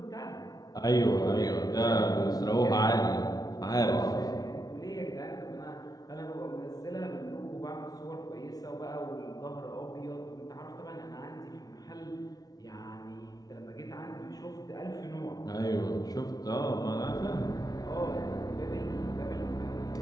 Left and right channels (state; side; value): late; right; 0.18 ms